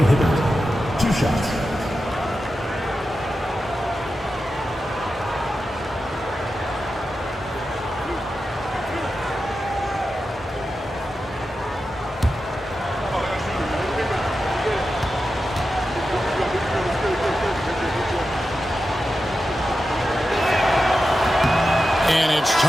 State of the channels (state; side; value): normal; both; correlation 0.91